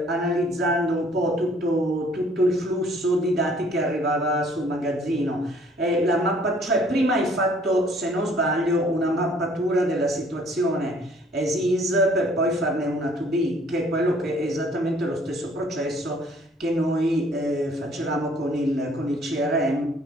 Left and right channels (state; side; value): normal; both; correlation 0.58